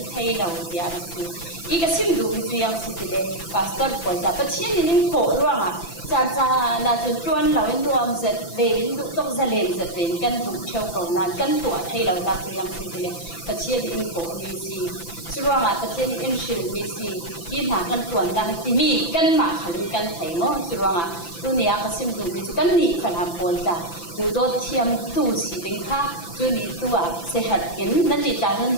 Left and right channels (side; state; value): right; late; 5.9 ms